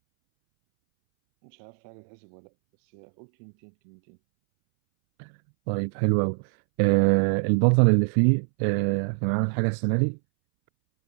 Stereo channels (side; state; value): left; silent; 63 dB below the other